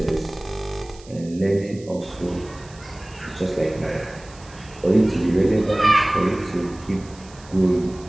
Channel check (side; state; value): right; noise; hiss, 23 dB below the sound